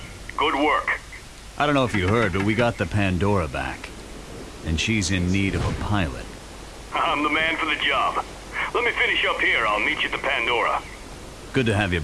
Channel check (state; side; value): identical; both; correlation 1.00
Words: Good work. I don't know if you heard, but we got the Pandora back. And she's in need of a pilot. I'm the man for the job. Let me finish up here. I'll meet you at the Pandora. Good to have you